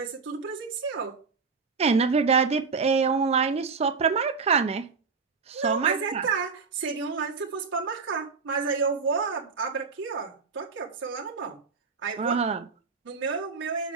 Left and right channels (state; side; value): quieter; left; 5.1 dB